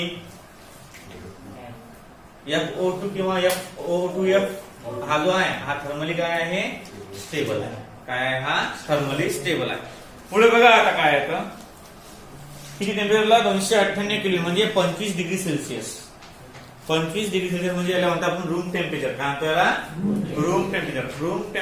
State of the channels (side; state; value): both; identical; correlation 1.00